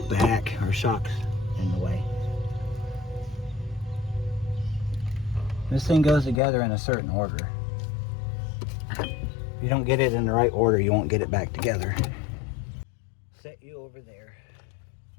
back. Our shock's in the way. This thing goes together in a certain order. If you don't get it in the right order, you won't get it back together. Set you over there.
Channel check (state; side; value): drops out; right; at 6.4 s